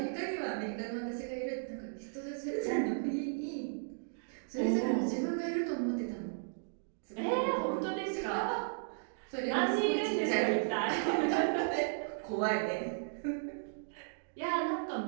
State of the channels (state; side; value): silent; left; digital silence